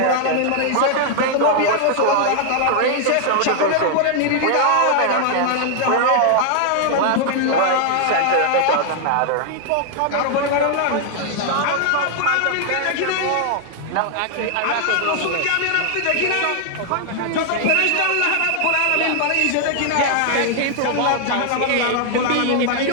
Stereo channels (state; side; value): different; both; correlation 0.00